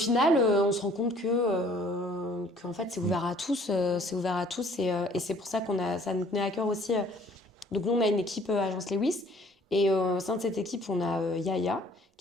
on se rend compte que en fait, c'est ouvert à tous, c'est ouvert à tous, et c'est pour ça ça nous tenait à cœur aussi. Donc nous, on a une équipe Agence Lewis, et au sein de cette équipe, on a Yaya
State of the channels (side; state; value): both; normal; correlation 0.57